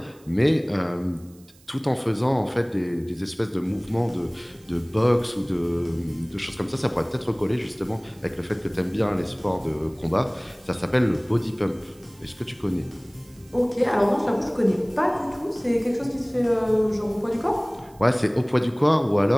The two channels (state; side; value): noise; right; hiss, 28 dB below the sound